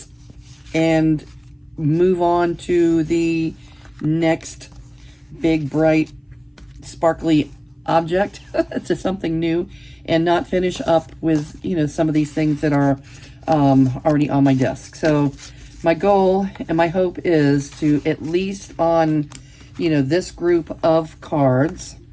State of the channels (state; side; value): identical; both; correlation 1.00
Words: and move on to the next big, bright, sparkly object to something new, and not finish up with some of these things that are already on my desk. So my goal and my hope is to, at least on this group of cards,